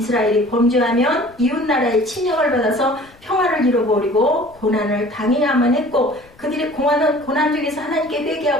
범죄하면 이웃나라의 침략을 받아서 평화를 잃어버리고 고난을 당해야만 했고 그들이 고난 중에서 하나님께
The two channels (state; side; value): noise; left; rumble, 27 dB below the sound